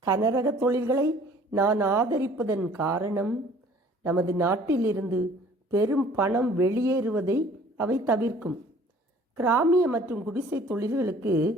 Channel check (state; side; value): normal; both; correlation 0.53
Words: கனரக தொழில்களை நான் ஆதரிப்பதன் காரணம் நமது நாட்டிலிருந்து பெரும் பணம் வெளியேறுவதை அவை தவிர்க்கும். கிராமிய மற்றும் குடிசை தொழில்களுக்கு